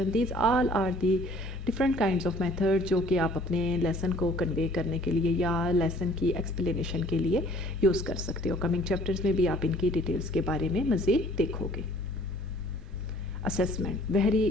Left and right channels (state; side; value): normal; both; correlation 0.54